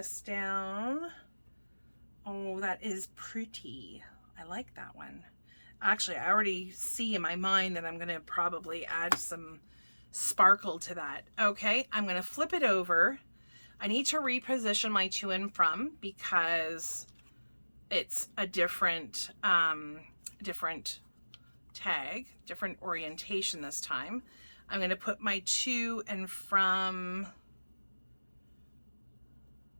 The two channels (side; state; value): both; inverted; correlation -1.00